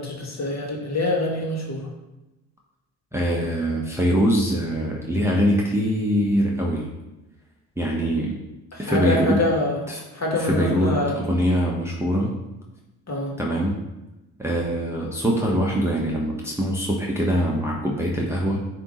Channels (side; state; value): both; normal; correlation 0.56